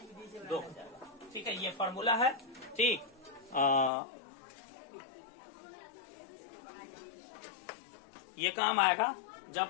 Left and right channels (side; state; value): right; drops out; at 3.9 s